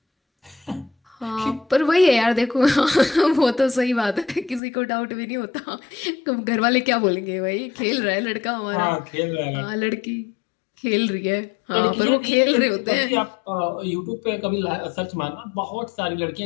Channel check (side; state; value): right; drops out; at 4.6 s